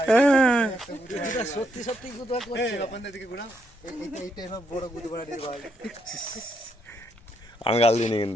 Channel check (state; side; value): normal; both; correlation 0.77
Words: সত্যি সত্যি গুদা করছে। আপনাদের দিকে ঘোরা, এইটা এবার বড় গুদা বাড়া দিয়ে ভাই। আমি গাল দিইনি